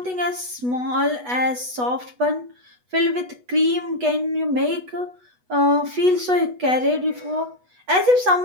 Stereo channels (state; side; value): late; left; 8.1 ms